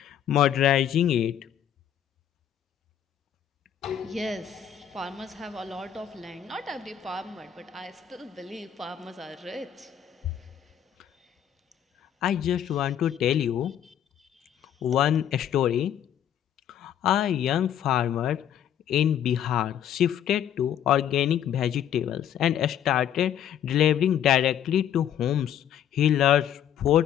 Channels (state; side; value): quieter; right; 9.9 dB